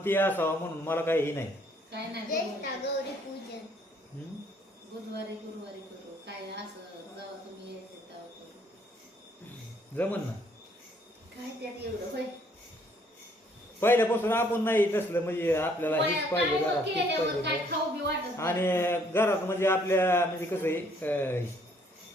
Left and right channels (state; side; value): normal; both; correlation 0.64